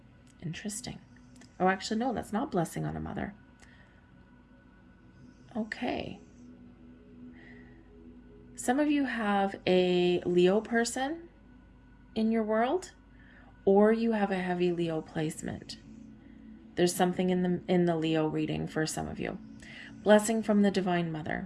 Interesting. Oh, actually, no, that's not blessing on a mother. Okay. Some of you have a Leo person in your world, or you have a heavy Leo placement. There's something in the Leo reading for some of you. Blessing from the Divine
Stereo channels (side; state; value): both; identical; correlation 1.00